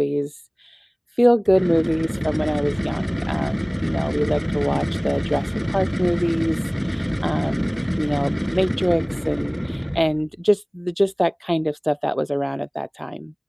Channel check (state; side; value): identical; both; correlation 1.00